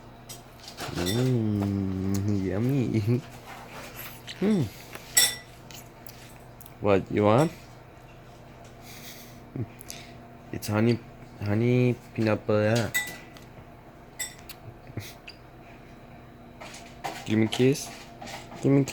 Yummy. What you want? It's honey peanut butter. Give me a kiss. Give me a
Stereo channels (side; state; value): both; identical; correlation 1.00